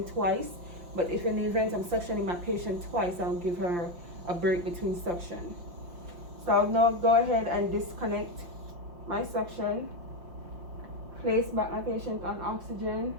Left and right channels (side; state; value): left; late; 5.8 ms